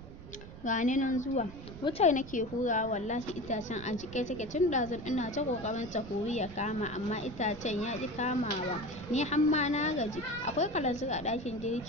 gani nan zuwa. Wutar nake hurawa, wallahi itacen a jike take tun ɗazun ina ta ƙoƙarin ta huri ya kama, amma itacen ya ƙi kamawa. Ni hamma na gaji. Akwai kalanzir a ɗakin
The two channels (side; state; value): right; noise; rumble, 14 dB below the sound